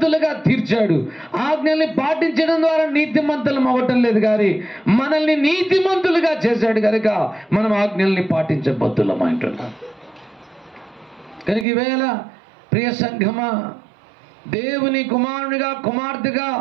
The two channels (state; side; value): drops out; left; at 11.7 s